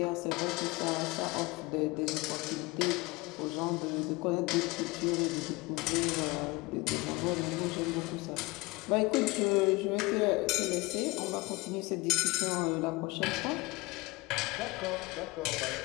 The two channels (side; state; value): right; quieter; 23.6 dB